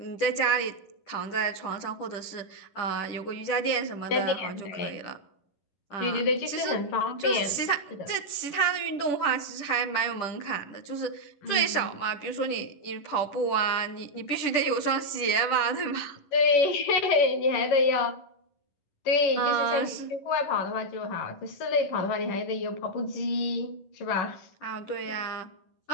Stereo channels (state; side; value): late; right; 10 ms